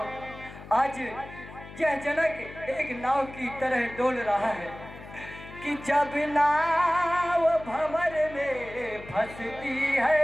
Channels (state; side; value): noise; left; hum, 16 dB below the sound